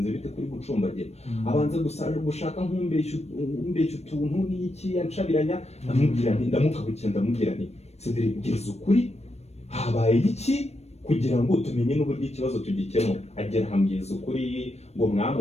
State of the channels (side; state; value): right; late; 0.31 ms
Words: bite kuri gucumbagira abanza gushaka nk'umbeshya utuntu n'iki yancabiranya ndamukabukira ndamubwira nti Cedric ngeze ukuri habaye iki kugira ngo tumenye n'uburyo ikibazo tugikemura agera hambwiza ukuri ngo